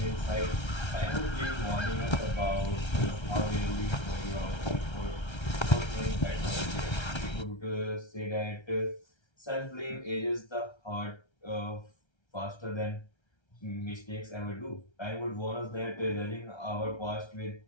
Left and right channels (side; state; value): right; late; 1.3 ms